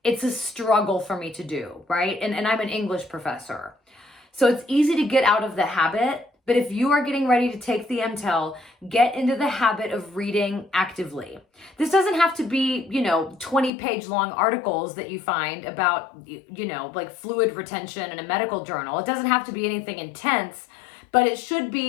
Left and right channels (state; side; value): drops out; right; at 13.7 s